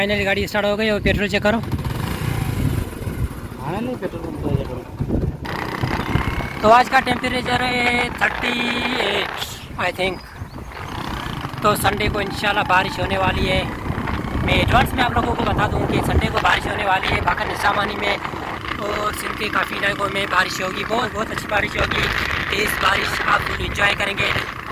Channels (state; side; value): identical; both; correlation 1.00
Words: गाड़ी स्टार्ट हो गई और पेट्रोल चेक करो। तो आज का टेम्परेचर है 38 आई थिंक। तो संडे को इंशाल्लाह बारिश होने वाली है। मैं एडवांस में आप लोगों को बता दूं कि संडे को बारिश होने वाली है। बाकी निज़ामानी में और सिंध के काफ़ी इलाकों में बारिश होगी, बहुत अच्छी बारिश होगी, तेज़ बारिश। आप लोग इंजॉय करेंगे